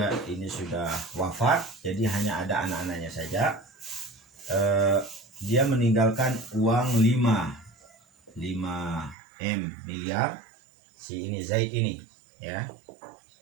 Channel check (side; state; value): left; drops out; at 9.2 s